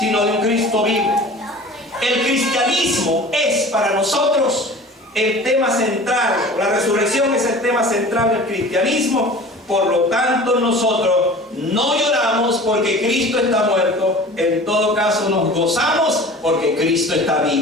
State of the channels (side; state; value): both; normal; correlation 0.41